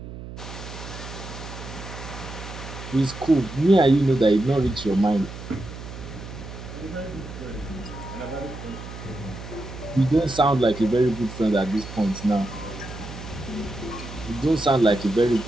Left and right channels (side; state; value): right; noise; hum, 11 dB below the sound